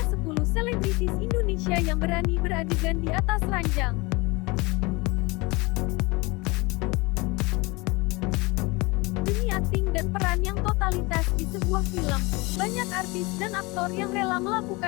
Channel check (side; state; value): right; quieter; 24.9 dB